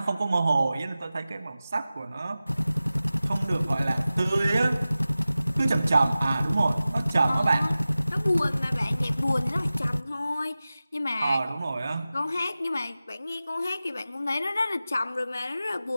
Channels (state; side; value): inverted; both; correlation -0.96